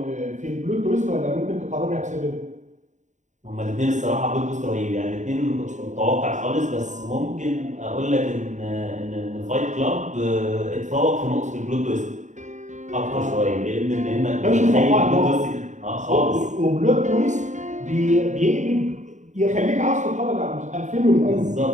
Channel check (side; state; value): left; late; 0.35 ms